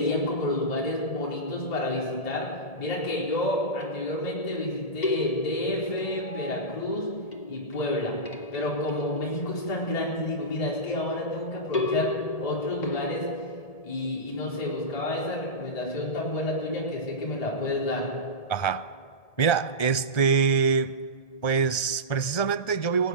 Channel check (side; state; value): right; late; 1.7 ms